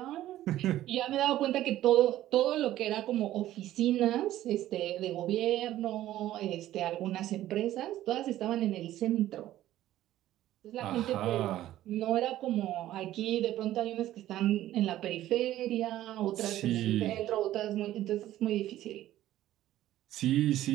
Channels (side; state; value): left; quieter; 13.8 dB